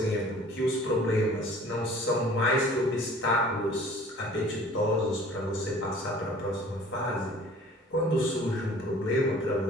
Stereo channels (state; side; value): normal; both; correlation 0.49